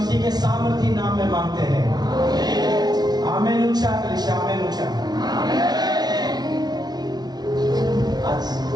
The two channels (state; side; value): late; left; 0.19 ms